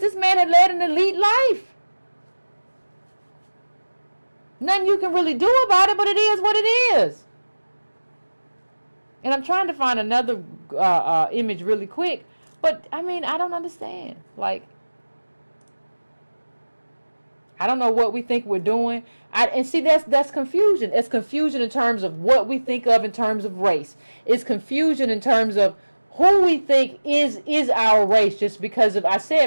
man had led an elite life. Nothing you can really do about it, but it is what it is. And I'm trying to find another image really quick. But, I mean, I don't understand. Like, I don't know what we think we're doing. And see, that's confusion. It's confusion in terms of what we think of in terms of race. It's confusion in terms of who we think is our race. Just because of, I've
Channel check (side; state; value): both; inverted; correlation -1.00